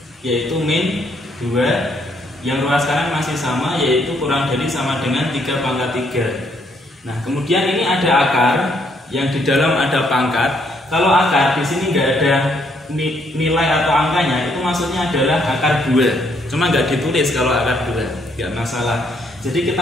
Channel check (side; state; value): both; normal; correlation 0.70